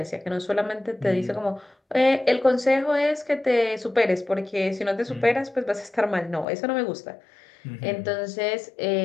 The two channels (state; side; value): drops out; right; at 6.5 s